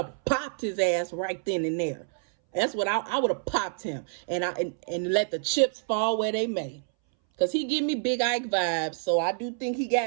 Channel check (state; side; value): silent; left; 60 dB below the other